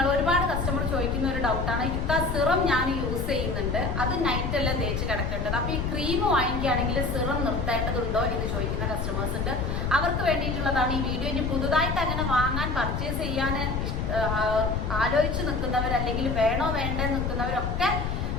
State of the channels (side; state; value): left; noise; rumble, 2 dB below the sound